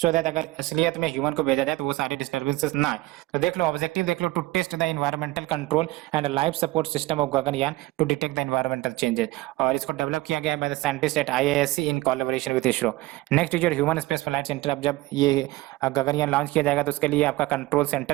सो दैट अगर असलियत में ह्यूमन को भेजा जाए तो वो सारे डिस्टर्बेंसेस ना आए। तो देख लो ऑब्जेक्टिव देख लो, to test the environmental control and life support system of Gaganyaan to detect the environmental changes, और इसको डेवलप किया गया है by the scientist at IISc in collaboration with ISRO. Next is your human space flight centre. अब जब ये गगनयान लॉन्च किया जाएगा तो उसके लिए आपका कंट्रोल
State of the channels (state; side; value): quieter; left; 19.2 dB